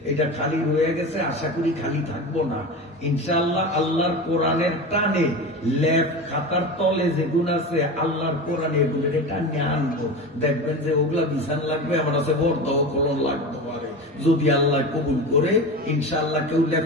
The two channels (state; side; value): normal; both; correlation 0.27